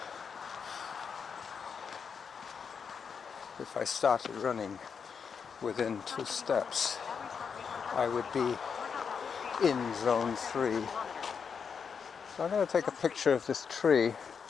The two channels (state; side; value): quieter; right; 6.4 dB